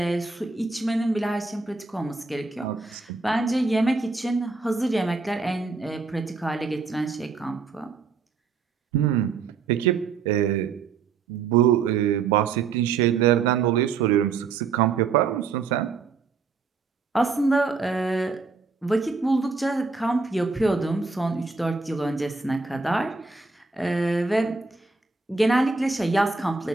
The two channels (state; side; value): quieter; left; 4.7 dB